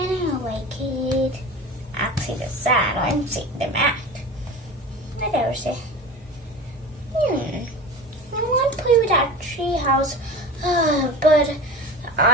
I like it. Actually, the sand, I'm seeing the mat. What else? I want to play with that tree house, but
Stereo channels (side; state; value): both; normal; correlation 0.33